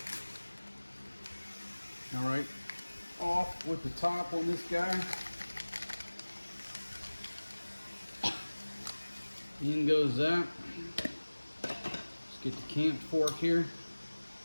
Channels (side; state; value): both; inverted; correlation -1.00